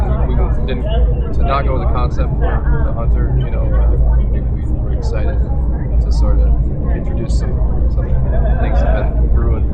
we didn't to not go with the concept for the Hunter. We were excited to sort of introduce some things that have been brewing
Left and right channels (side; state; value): both; identical; correlation 1.00